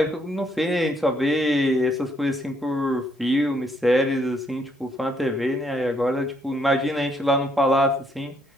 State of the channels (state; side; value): normal; both; correlation 0.71